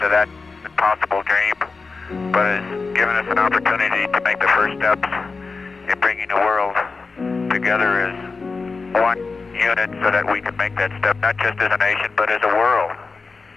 that impossible dream, but has given us an opportunity to make the first steps in bringing the world together as one unit so that we can make that step not just as a nation, but as a world.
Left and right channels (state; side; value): quieter; right; 4.3 dB